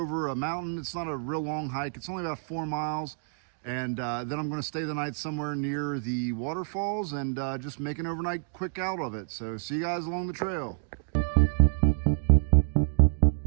a mountain. It's not a real long hike. It's only about 4 miles. And then I'm going to stay the night somewhere near the waterfalls and just make an overnight quick out of it. So see you guys along the trail.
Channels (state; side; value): silent; left; digital silence